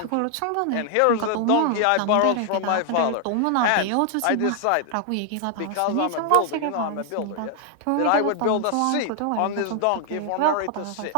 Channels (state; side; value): different; both; correlation 0.00